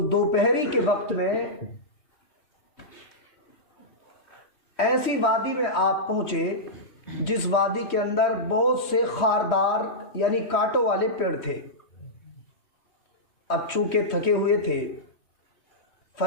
دوپہری کے وقت میں ایسی وادی میں آپ پہنچے جس وادی کے اندر بہت سے خاردار یعنی کانٹوں والے پیڑ تھے۔ اب چونکہ تھکے ہوئے تھے،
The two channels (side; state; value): right; late; 3.1 ms